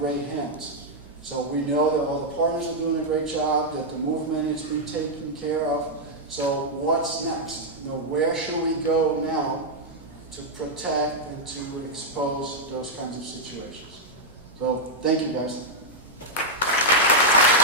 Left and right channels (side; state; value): right; noise; hum, 25 dB below the sound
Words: hands. So we know that all the partners are doing a great job, that the movement is being taken care of. So what's next? Where should we go now to protect and to expose those kinds of situations? So thank you, guys.